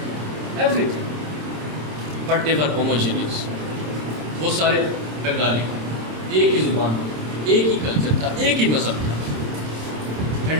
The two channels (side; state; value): left; late; 26 ms